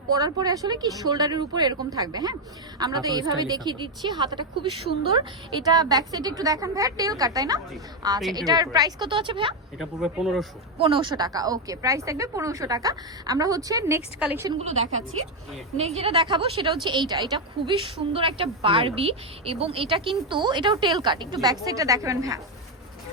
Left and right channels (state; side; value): normal; both; correlation 0.05